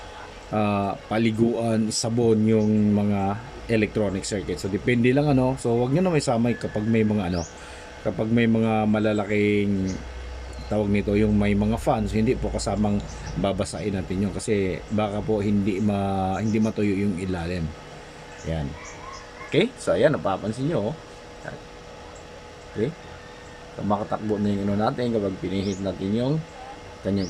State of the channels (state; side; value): identical; both; correlation 1.00